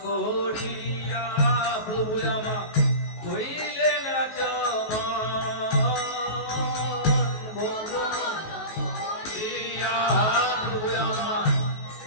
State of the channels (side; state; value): right; late; 19 ms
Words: করিয়া প্রভু আমা হইলেন আচমন, ভোজন করিয়া প্রভু আমা